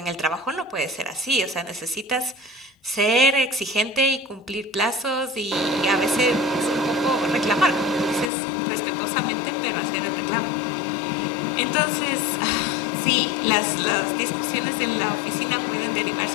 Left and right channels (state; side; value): drops out; right; at 8.3 s